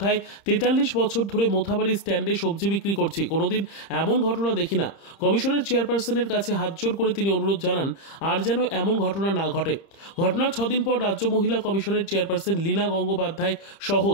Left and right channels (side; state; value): right; late; 30 ms